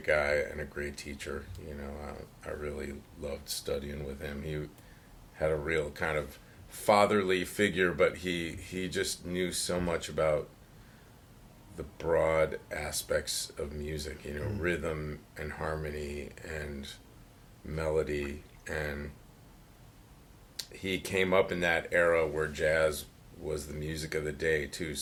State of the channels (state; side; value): identical; both; correlation 1.00